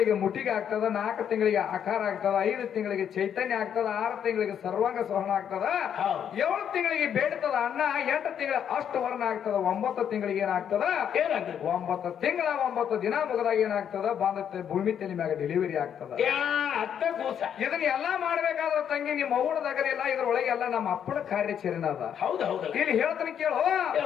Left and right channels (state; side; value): quieter; right; 8.7 dB